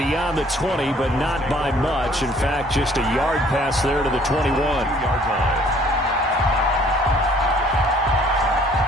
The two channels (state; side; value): normal; both; correlation 0.58